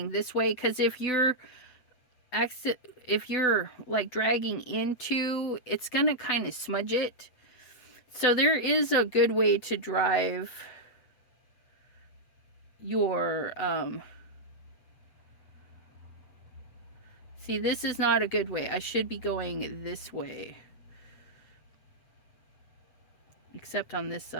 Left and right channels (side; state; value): right; late; 8.0 ms